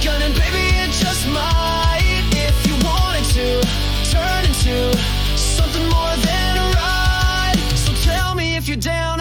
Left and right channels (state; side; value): identical; both; correlation 1.00